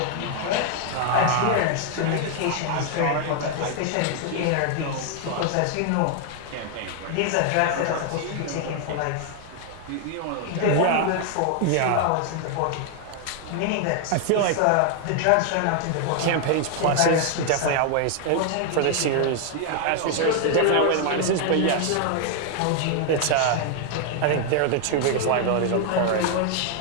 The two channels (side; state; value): both; different; correlation 0.00